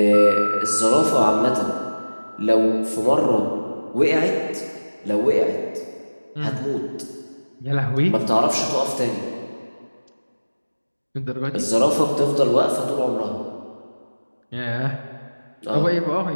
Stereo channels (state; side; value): inverted; both; correlation -1.00